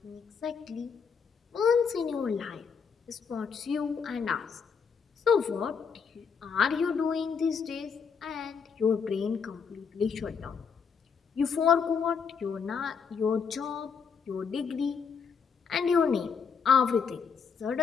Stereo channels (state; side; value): quieter; right; 6.1 dB